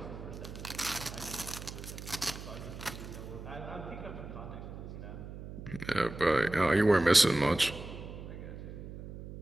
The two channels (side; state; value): right; noise; hum, 11 dB below the sound